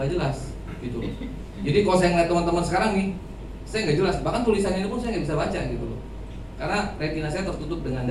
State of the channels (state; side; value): identical; both; correlation 1.00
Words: jelas, gitu loh. Jadi kalau saya ngeliat teman-teman sekarang nih, saya nggak jelas. Bahkan tulisannya ini pun saya nggak bisa baca, gitu loh. Karena retina saya tertutup dengan